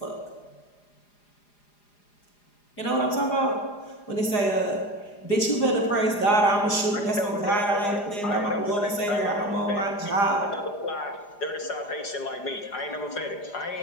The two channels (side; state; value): right; late; 4.9 ms